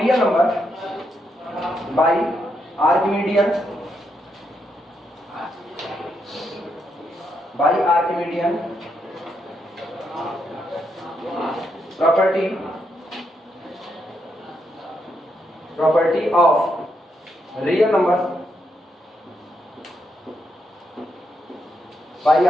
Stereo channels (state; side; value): normal; both; correlation 0.80